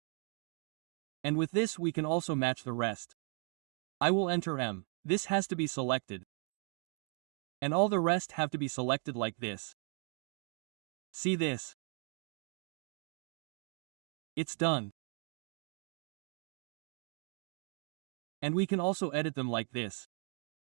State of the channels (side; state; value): left; quieter; 38.9 dB